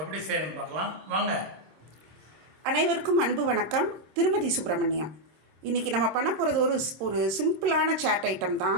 செய்யணும்னு பார்க்கலாம் வாங்க. அனைவருக்கும் அன்பு வணக்கம். திருமதி சுப்பிரமணியம். இன்றைக்கி நம்ம பண்ண போகிறது ஒரு சிம்பிளான சாட் ஐட்டம்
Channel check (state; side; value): late; left; 26 ms